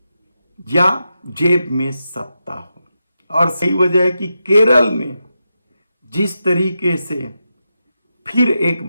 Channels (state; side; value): inverted; both; correlation -0.88